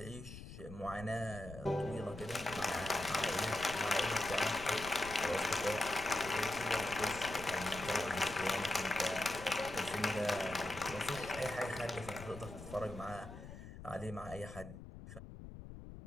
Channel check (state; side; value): noise; left; rumble, 12 dB below the sound